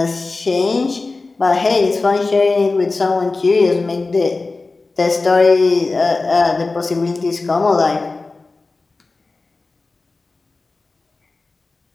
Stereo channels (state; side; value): quieter; right; 3.6 dB